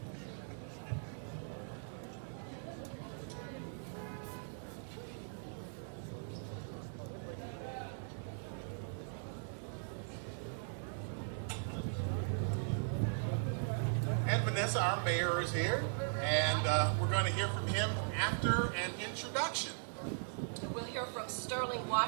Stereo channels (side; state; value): left; silent; digital silence